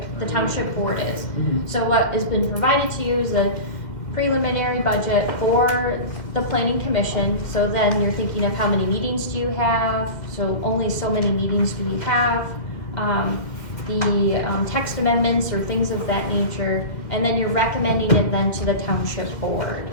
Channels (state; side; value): late; right; 2.3 ms